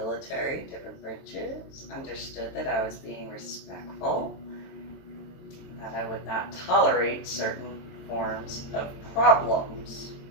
different branches, understood that I was being respectful, that I would not tolerate certain forms of problems.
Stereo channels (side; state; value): right; late; 22 ms